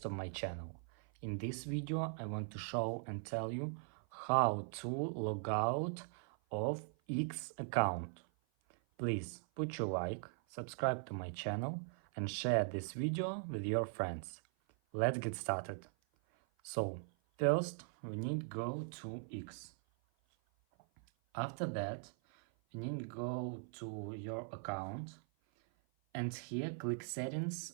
of my channel. In this video I want to show and tell you how to log out of X account. Please put your like, subscribe to my channel and share this video with your friends. Let's get started. So first we need to go to X. After that you need to go to your account. And here click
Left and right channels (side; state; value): left; silent; 51 dB below the other